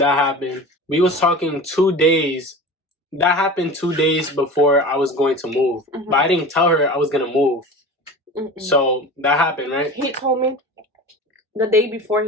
happened. We was talking 2 days. That happened 2 days before I was going to move. But I didn't tell her I was gonna move. So that happened, right? He told me the day before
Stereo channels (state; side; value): normal; both; correlation 0.34